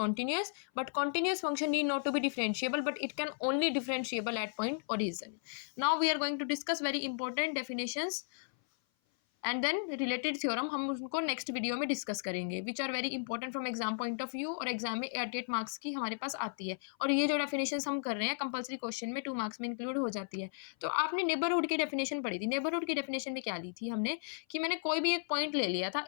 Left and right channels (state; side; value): silent; right; 54 dB below the other